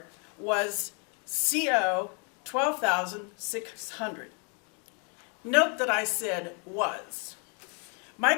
was CO 12,600. Note that I said was.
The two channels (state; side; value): quieter; right; 37.9 dB